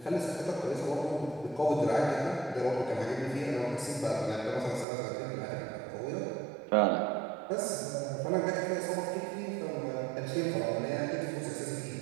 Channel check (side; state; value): left; drops out; at 4.9 s